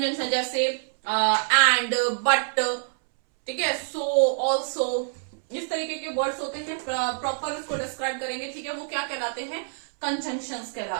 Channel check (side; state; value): left; silent; 61 dB below the other